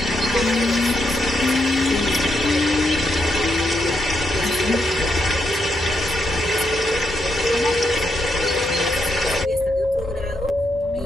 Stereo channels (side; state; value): both; normal; correlation 0.80